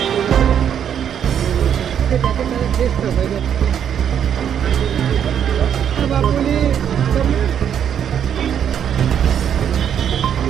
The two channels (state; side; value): quieter; left; 8.9 dB